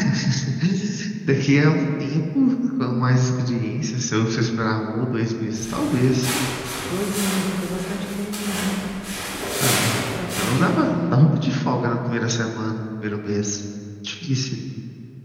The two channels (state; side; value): identical; both; correlation 1.00